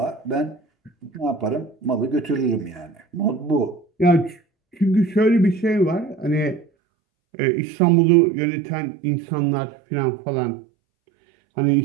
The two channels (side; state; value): left; drops out; at 6.7 s